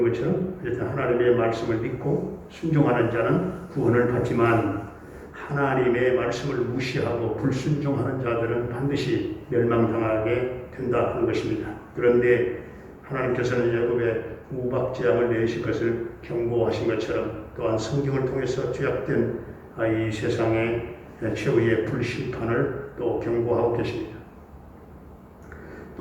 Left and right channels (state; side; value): identical; both; correlation 1.00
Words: 것처럼 하나님의 말씀을 믿고 순종하는 자는 구원을 받지만 하나님의 말씀을 무시하고 불순종하는 자들은 반드시 멸망당하게 된다 하는 것입니다. 그런데 하나님께서는 애굽의 우박 재앙을 내리실 것을 경고하신 것처럼 또한 성경을 통해서 죄악된 이 세상의 최후의 불심판을 또 경고하고 계십니다.